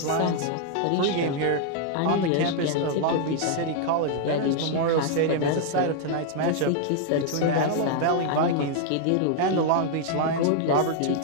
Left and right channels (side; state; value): both; different; correlation 0.00